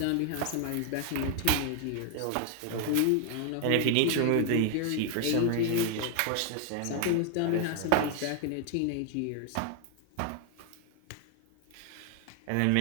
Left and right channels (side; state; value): both; different; correlation 0.00